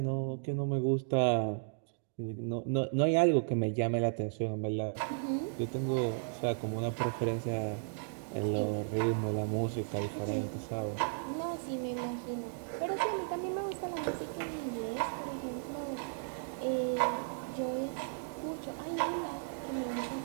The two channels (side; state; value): left; silent; digital silence